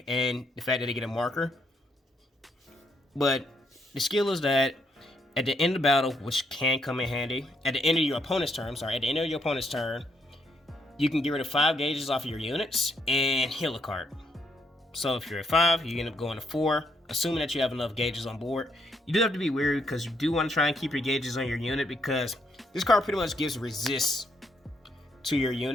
and the fact that they get a marker. But the skill is that at the end of the battle, which can come in handy, at the end of your opponent's turn, you can get rid of 5 gauges off of your units and heal a card. So if you're at 5, you end up going to 4, assuming that you have enough gauges on board. You do have to be wary because you do want to try and keep your gauges on your unit, because this card pretty much gives resist to your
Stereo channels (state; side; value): normal; both; correlation 0.75